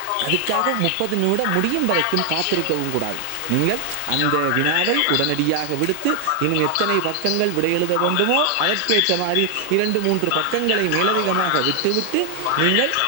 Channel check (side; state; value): both; different; correlation 0.00